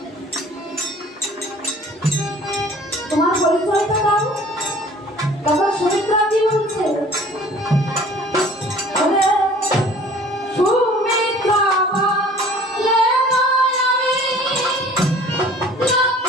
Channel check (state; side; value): normal; both; correlation 0.49